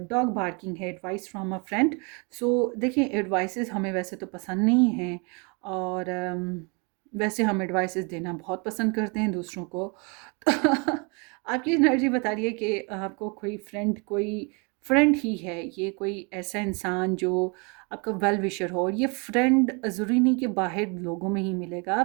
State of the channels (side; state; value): left; quieter; 32.4 dB